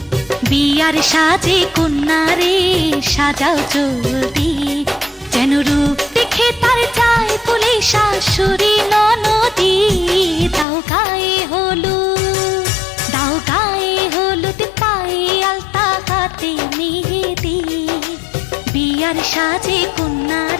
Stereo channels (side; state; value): right; drops out; at 10.7 s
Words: বিয়ার সাজে কন্যারে সাজাও চলতি, যেন রূপ দেখে তার চায় বলে শাশুড়ি ননদি। দাও গায়ে হলুদ, দাও গায়ে হলুদ, পায়ে আলতা, হাতে মেহেদি, বিয়ার সাজে